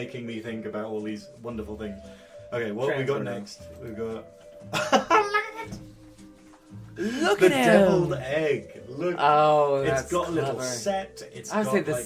me think about all these wonderful things. Okay, what have we got next? We've got Look the at him. deviled egg. Look, Oh, it's that's got a little clever. set. It's I would got say the like,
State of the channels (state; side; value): identical; both; correlation 1.00